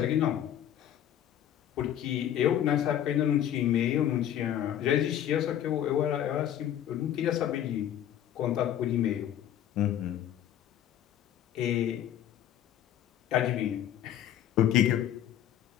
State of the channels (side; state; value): right; quieter; 10.9 dB